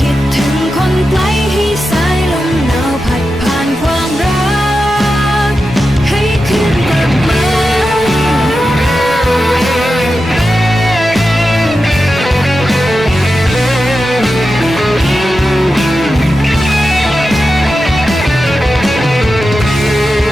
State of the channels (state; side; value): normal; both; correlation 0.91